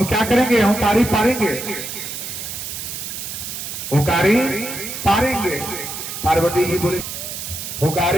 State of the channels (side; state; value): right; noise; hiss, 7 dB below the sound